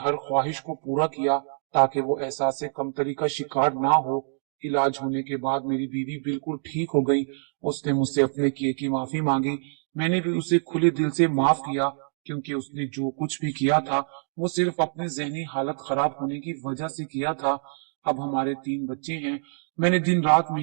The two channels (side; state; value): left; silent; digital silence